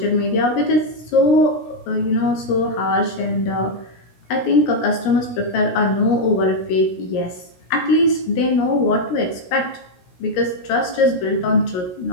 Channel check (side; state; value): right; late; 16 ms